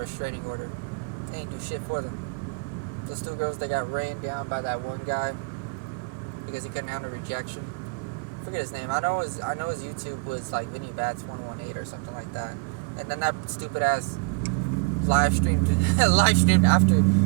restraining order. They ain't do shit for them. Those 2 girls, they got rained down by that one guy because he couldn't handle rejection. I forget his name. I know his YouTube was like Vinny Bats 118 or something like that. And then that stupid ass live streamed after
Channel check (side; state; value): left; quieter; 30.6 dB